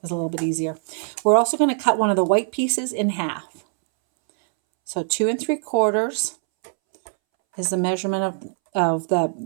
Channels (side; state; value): left; silent; 64 dB below the other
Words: little bit easier. We're also going to cut one of the white pieces in half. So 2 3/4 is the measurement of the